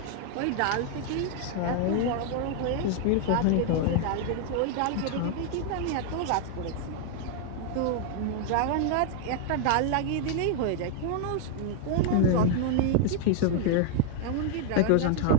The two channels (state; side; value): different; both; correlation 0.00